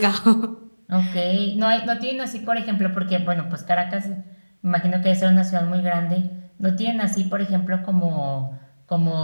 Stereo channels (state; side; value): inverted; both; correlation -1.00